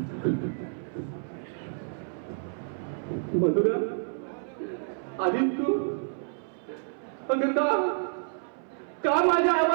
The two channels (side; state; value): left; silent; 59 dB below the other